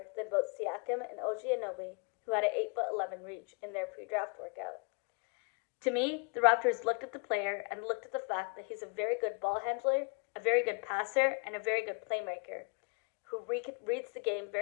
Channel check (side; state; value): right; quieter; 35.3 dB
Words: than both Siakam and OG Anunoby, who had an 8'11" reach in their pre-draft workout. To me, the Raptors looked at the player and looked at the fact that he's a very good ball handler, a very good passer, and a very good playmaker, who reads the game